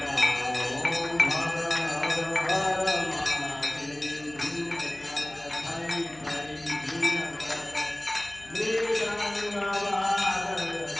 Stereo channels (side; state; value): left; noise; hum, 25 dB below the sound